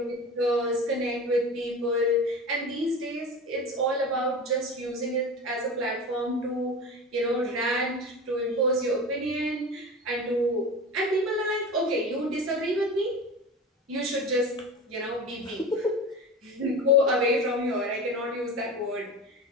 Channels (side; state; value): both; normal; correlation 0.31